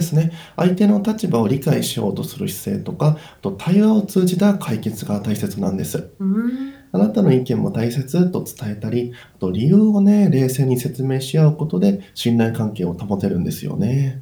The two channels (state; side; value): identical; both; correlation 1.00